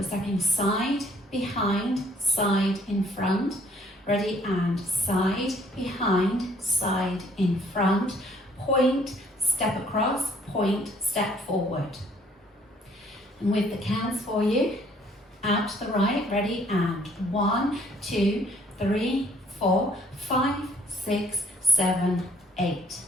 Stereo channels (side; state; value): both; normal; correlation 0.63